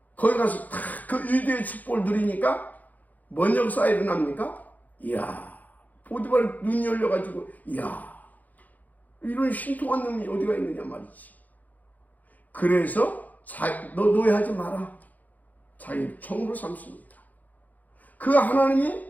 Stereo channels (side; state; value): right; late; 0.080 ms